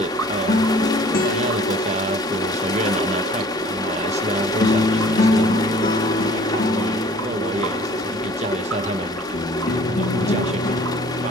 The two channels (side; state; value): both; normal; correlation 0.51